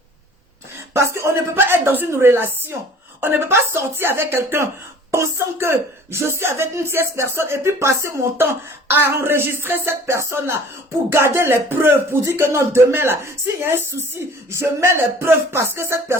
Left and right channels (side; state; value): both; normal; correlation 0.49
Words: Parce qu'on ne peut pas être dans une relation. On ne peut pas sortir avec quelqu'un pensant que je suis avec une tierce personne et puis passer mon temps à enregistrer cette personne-là pour garder les preuves, pour dire que non, demain là, s'il y a un souci, je mets les preuves parce que cette